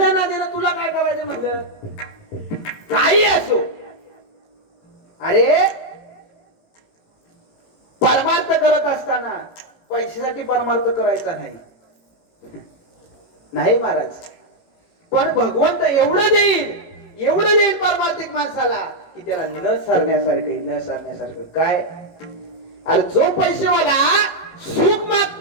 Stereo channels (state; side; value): late; right; 18 ms